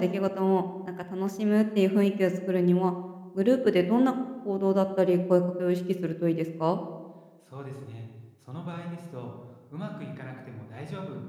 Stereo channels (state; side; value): identical; both; correlation 1.00